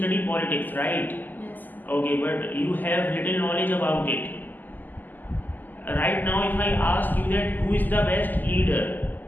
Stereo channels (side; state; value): right; late; 0.086 ms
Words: politics, right? Yes. Okay, but you have little knowledge about it. Right now, if I ask you that who is the best leader,